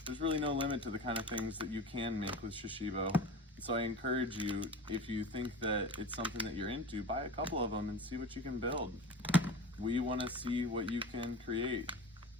There's really no limit to the kind of things that you can make with Shashibo. So I encourage you, if you think that it's something that you're into, buy a couple of them and see what you can build. We want to see what you can create.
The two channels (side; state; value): both; normal; correlation 0.33